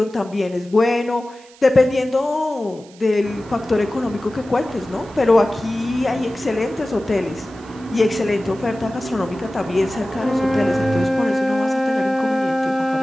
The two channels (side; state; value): right; noise; hiss, 25 dB below the sound